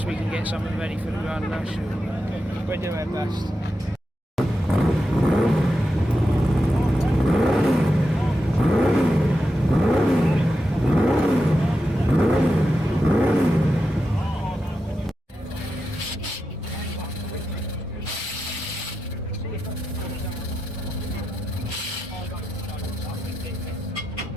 we can get something ready for the Grand National. We'll do our best.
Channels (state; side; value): normal; both; correlation 0.88